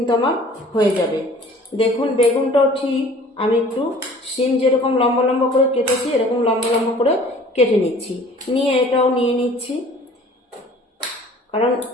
আমার হয়ে যাবে। দেখুন, বেগুনটাও ঠিক আমি একটু সিম যেরকম লম্বা লম্বা করে কেটেছি এরকম লম্বা লম্বা করে কেটে নিচ্ছি। নিয়ে এটাও নিয়ে নিচ্ছি, কারণ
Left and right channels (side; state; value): both; normal; correlation 0.50